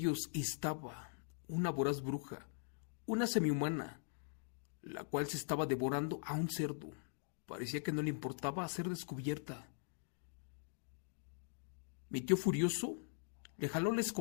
estaba una voraz bruja, una semihumana, la cual se estaba devorando a un cerdo. Parecía que no le importaba ser descubierta. Mi tío furioso le jaló la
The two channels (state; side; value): silent; right; digital silence